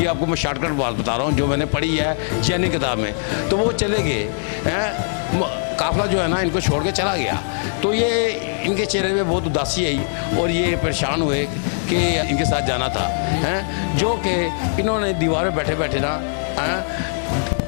आपको मैं शॉर्टकट बात बता रहा हूँ जो मैंने पढ़ी है चैनी किताब में। तो वो चले गए हैं, काफ़िला जो है ना इनको छोड़ के चला गया। तो ये इनके चेहरे में बहुत उदासी आई और ये परेशान हुए कि इनके साथ जाना था, हैं। जो कि इन्होंने दीवार पे बैठे बैठे ना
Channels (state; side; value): silent; right; digital silence